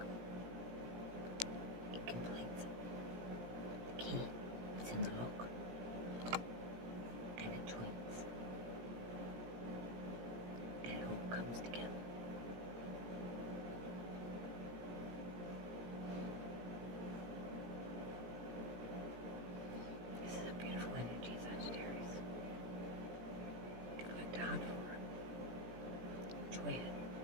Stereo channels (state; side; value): late; left; 17 ms